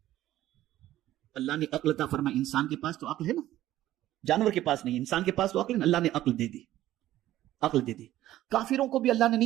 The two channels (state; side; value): quieter; left; 14.1 dB